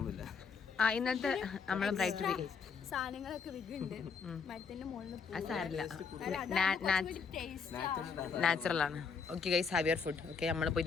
ഇന്നത്തെ നമ്മളെ ബ്രൈറ്റ് സാധനങ്ങളൊക്കെ നാച്ചുറൽ ആണ്. Okay guys, have your food. Okay, നമ്മൾ പോയി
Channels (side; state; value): right; quieter; 5.6 dB